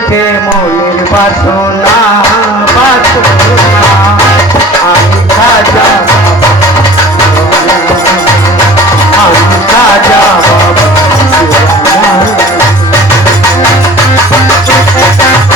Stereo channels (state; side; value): normal; both; correlation 0.44